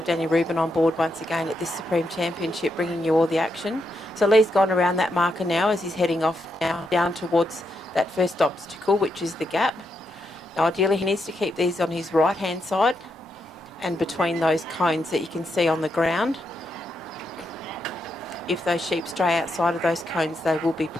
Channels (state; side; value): normal; both; correlation 0.81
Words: Danny Rubin on board once again at this Supreme Championship, bringing you all the action. So Lee's gone around that marker now as he's heading off now down towards that first obstacle, which is the gap. Now, ideally, he needs to keep these on his right-hand side and between those cones that you can see on the ground. If those sheep stray outside of those cones, they will be